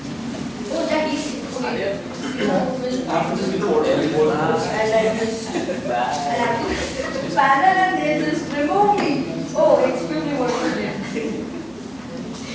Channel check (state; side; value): noise; right; hum, 28 dB below the sound